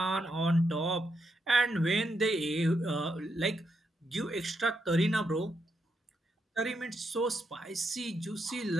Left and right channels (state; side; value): normal; both; correlation 0.81